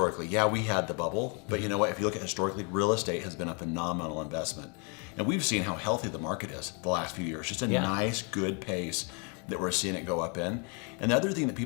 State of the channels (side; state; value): right; quieter; 35.1 dB